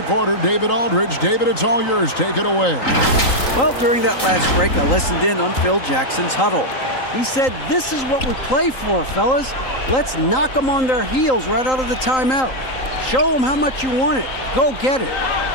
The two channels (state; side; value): late; right; 3.8 ms